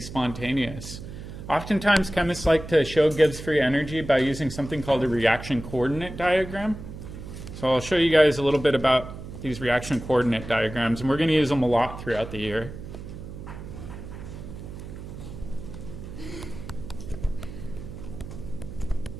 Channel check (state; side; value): noise; right; hum, 11 dB below the sound